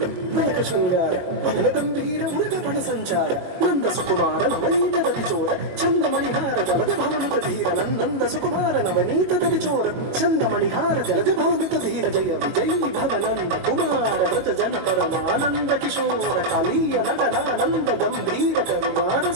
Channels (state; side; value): late; left; 22 ms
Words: తిలక శృంగార వదన గంభీర ఉరగ పణ సంచార నంద సుకుమార నవనీత దతిచోర చందమణిహార జలద భవనుత ధీర నంద సుకుమార నవనీత దతిచోర చందమణిహార జలద భవనుత ధీర జయ విజయీ భవనంద కుమార వ్రజ జన పరమానంద కిశోర కాళీయ నగనానంద గంభీర కరుణార